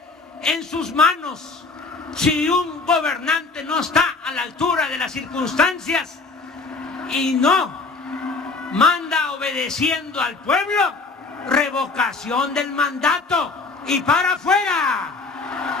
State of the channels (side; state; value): right; quieter; 3.9 dB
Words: en sus manos. Si un gobernante no está a la altura de las circunstancias y no manda obedeciendo al pueblo, revocación del mandato y para afuera.